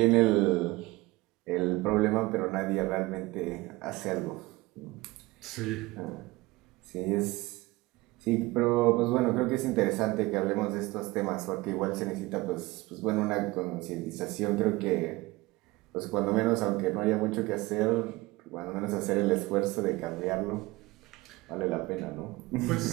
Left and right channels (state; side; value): quieter; left; 21.1 dB